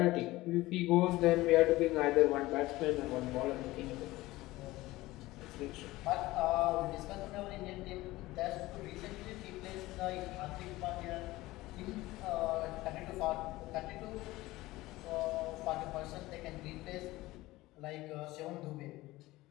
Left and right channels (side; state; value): right; quieter; 18.5 dB